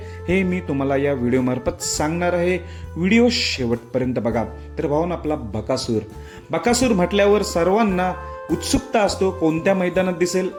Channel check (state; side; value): identical; both; correlation 1.00